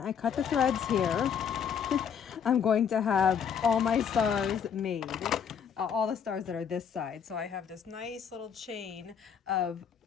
cut the threads here, I'm going to have all my stars made. All the stars that are this side. So I have this nice little chain of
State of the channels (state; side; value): quieter; right; 7.5 dB